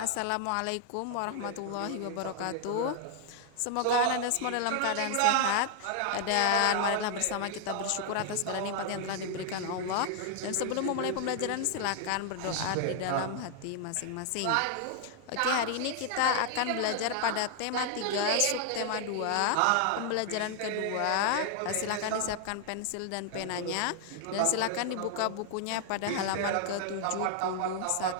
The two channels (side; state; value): both; different; correlation 0.00